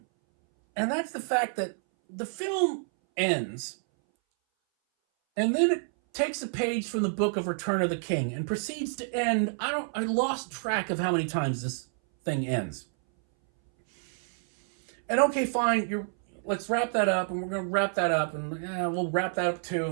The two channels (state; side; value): silent; left; 59 dB below the other